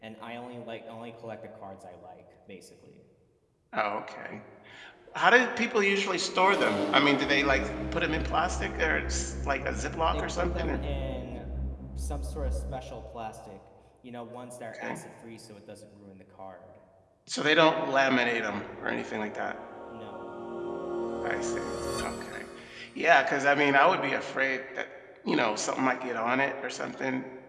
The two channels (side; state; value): both; identical; correlation 1.00